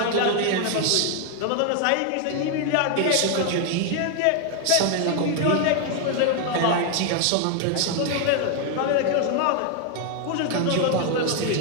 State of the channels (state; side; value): different; both; correlation 0.01